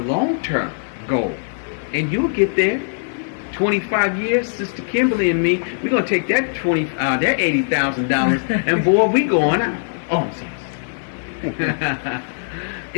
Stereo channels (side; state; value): right; silent; digital silence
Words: goal, and you'll get there. 25 years, Sister Kimberly and me, we're gonna take that that $80,000, and boy, we going out. Oh, I'm sorry.